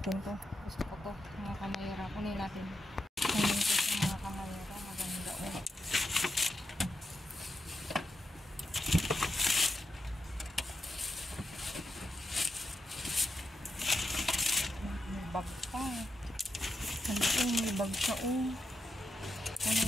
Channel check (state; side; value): normal; both; correlation 0.86